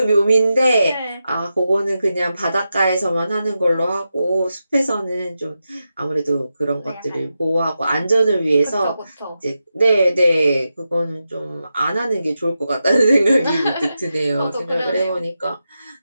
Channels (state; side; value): inverted; both; correlation -0.89